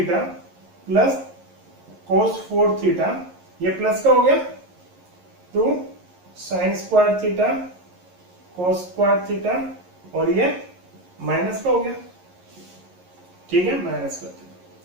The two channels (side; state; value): left; late; 11 ms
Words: plus cos 4 theta, ये प्लस का हो गया 2 sine square theta cos square theta और ये माइनस का हो गया, ठीक है माइनस का थीटा।